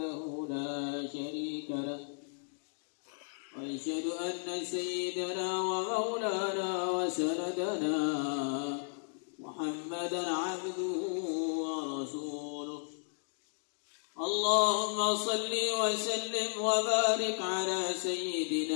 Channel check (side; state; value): right; silent; digital silence